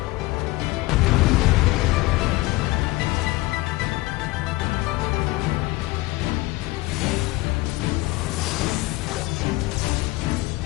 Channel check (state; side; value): quieter; right; 20.7 dB